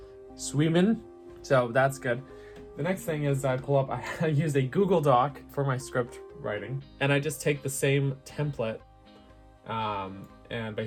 swimming. So that's good. The next thing is I use a Google Doc for my script writing, and I just take the same template and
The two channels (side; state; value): both; identical; correlation 1.00